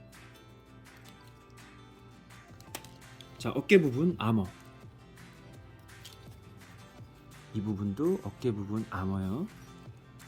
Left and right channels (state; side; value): identical; both; correlation 1.00